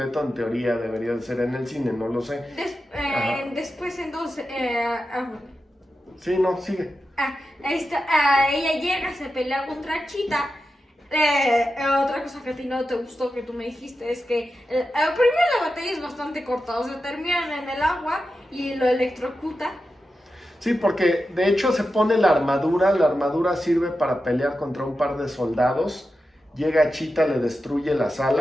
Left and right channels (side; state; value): both; normal; correlation 0.91